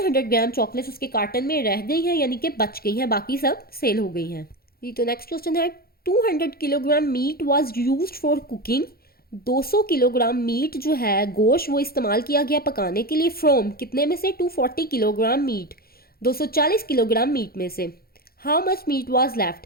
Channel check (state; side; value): late; right; 0.44 ms